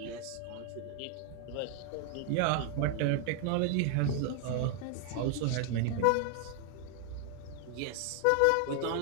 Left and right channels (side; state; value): both; different; correlation 0.00